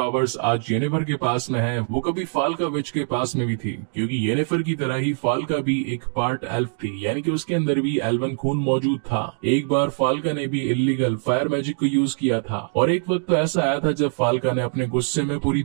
आज येनिफर के पास में है वो कभी फाल्का विच के पास में भी थी, क्योंकि येनिफर की तरह ही फाल्का भी एक पार्ट एल्फ थी, यानी कि उसके अंदर भी एल्वन खून मौजूद था। एक बार फाल्का ने भी इल्लीगल फायर मैजिक को यूज किया था, और एक वक्त तो ऐसा आया था जब फाल्का ने अपने गुस्से में पूरी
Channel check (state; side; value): silent; left; 63 dB below the other